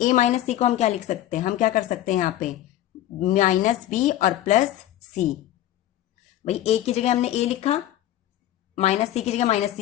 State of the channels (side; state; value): right; quieter; 13.3 dB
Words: ए माइनस सी को हम क्या लिख सकते हैं, हम क्या कर सकते हैं यहाँ पे, माइनस बी और प्लस सी। भाई ए की जगह हमने ए लिखा, माइनस सी की जगह माइनस